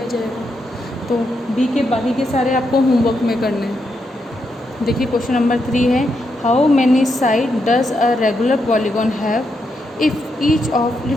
जाएगा। तो बी के बाकी के सारे आपको होमवर्क में करने हैं। देखिए क्वेश्चन नंबर 3 है, how many side does a regular polygon have if each of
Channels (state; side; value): normal; both; correlation 0.82